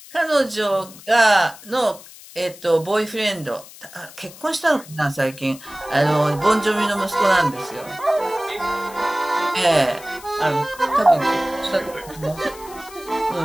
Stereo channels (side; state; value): left; noise; hiss, 19 dB below the sound